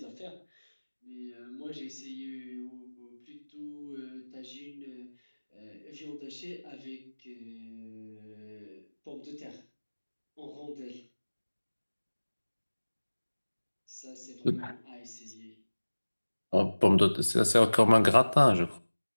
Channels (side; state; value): both; inverted; correlation -1.00